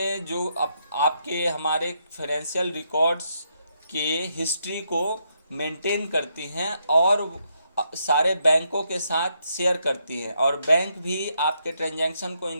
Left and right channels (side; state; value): both; inverted; correlation -0.78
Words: जो आपके हमारे फाइनेंशियल रिकॉर्ड्स के हिस्ट्री को मेंटेन करती हैं और सारे बैंकों के साथ शेयर करती हैं, और बैंक भी आपके ट्रांजैक्शन को